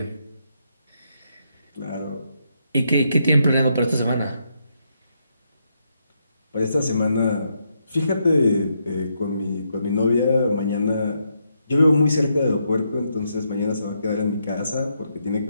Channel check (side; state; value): both; inverted; correlation -0.79